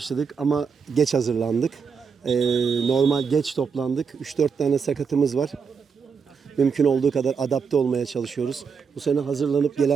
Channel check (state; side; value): quieter; left; 5.9 dB